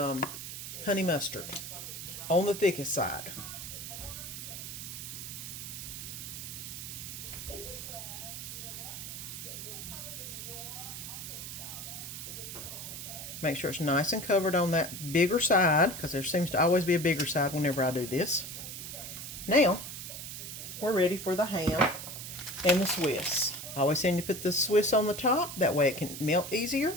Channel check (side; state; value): right; noise; hiss, 8 dB below the sound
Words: honey mustard on the thickest side. Make sure it's nice and covered on that bigger side, because there seems to always be a bigger side whenever I do this. Now, we're ready for the ham and the Swiss. I always seem to put the Swiss on the top, that way it can melt